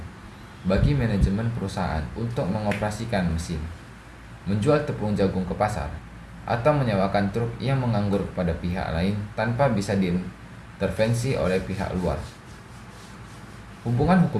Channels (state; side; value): identical; both; correlation 1.00